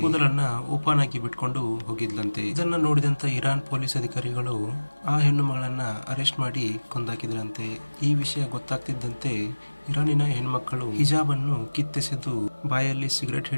ಕೂದಲನ್ನ ಓಪನ್ ಆಗಿ ಬಿಟ್ಕೊಂಡು ಹೋಗಿದ್ಲಂತೆ. ಇದನ್ನ ನೋಡಿದಂತ ಇರಾನ್ ಪೊಲೀಸ್ ಅಧಿಕಾರಿಗಳು ಆ ಹೆಣ್ಣು ಮಗಳನ್ನ ಅರೆಸ್ಟ್ ಮಾಡಿ ಕೊಂದಾಕಿದ್ರಂತೆ. ಈ ವಿಷಯ ಗೊತ್ತಾಗ್ತಿದ್ದಂತೆ ಇರಾನಿನ ಹೆಣ್ಮಕ್ಕಳು ಹಿಜಾಬ್ ಅನ್ನು ಕಿತ್ತೆಸೆದು ಬಾಯಲ್ಲಿ ಸಿಗರೇಟ್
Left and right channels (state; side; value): inverted; both; correlation -1.00